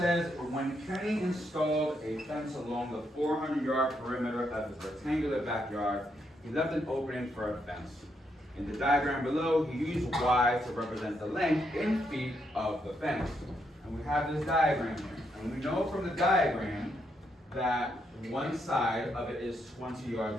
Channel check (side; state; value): both; normal; correlation 0.78